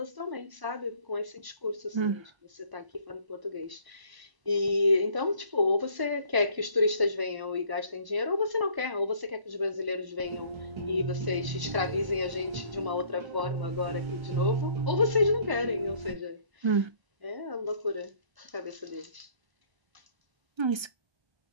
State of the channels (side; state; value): left; late; 1.0 ms